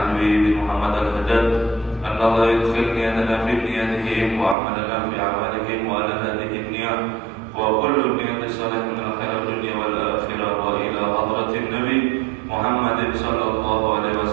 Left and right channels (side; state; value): left; drops out; at 4.5 s